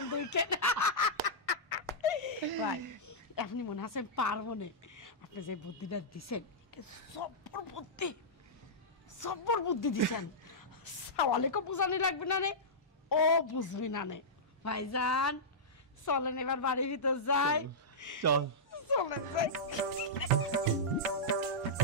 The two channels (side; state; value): both; normal; correlation -0.13